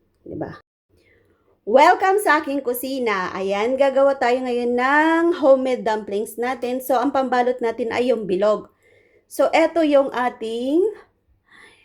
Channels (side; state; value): both; identical; correlation 1.00